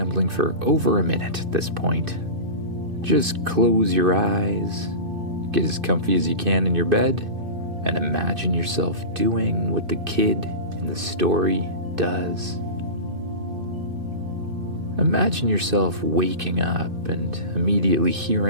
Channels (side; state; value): left; late; 2.6 ms